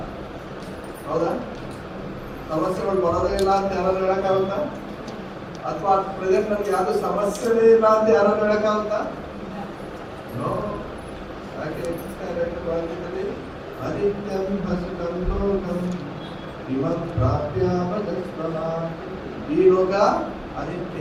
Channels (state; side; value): identical; both; correlation 1.00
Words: ಹೌದಾ? ಸಮಸ್ಯೆಗಳು ಬರೋದೇ ಇಲ್ಲ ಅಂತ ಯಾರು ಹೇಳಕ್ಕಾಗುತ್ತಾ? ಅಥವಾ ಪ್ರೆಸೆಂಟ್ ನಮ್ಗೆ ಯಾವ್ದು ಸಮಸ್ಯೆನೇ ಇಲ್ಲ ಅಂತ ಯಾರು ಹೇಳಕ್ಕಾಗುತ್ತಾ? ನೋ. ಯಾಕೆ ಅನಿತ್ಯಂ ಹಸುಕಂ ಲೋಕಂ ಇಮಂ ಪ್ರಾಪ್ಯಾಮಜಸ್ವಮ. ಈ ಲೋಕ